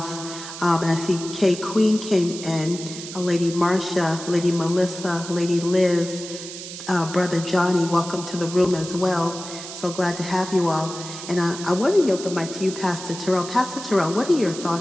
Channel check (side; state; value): right; noise; hiss, 11 dB below the sound